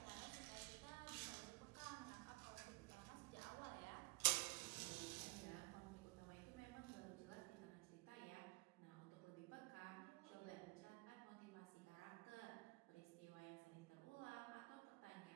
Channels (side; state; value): left; quieter; 25.2 dB